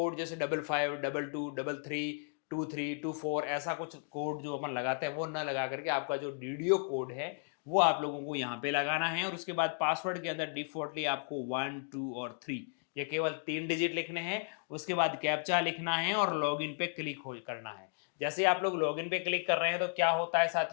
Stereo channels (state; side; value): silent; right; 55 dB below the other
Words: जैसे 5522232324 ऐसा कुछ कोड जो अपन लगाते हैं वो ना लगा करके आपका जो डीडीओ कोड है वो आप लोगों को यहाँ पे लगाना है। और उसके बाद पासवर्ड के अंदर डिफॉल्टली आपको 1 2 और 3 ये केवल 3 डिजिट लिखने हैं। उसके बाद कैप्चा लिखना है और लॉगिन पे क्लिक हो करना है। जैसे आप लोग लॉगिन पे क्लिक कर रहे हैं तो क्या होता है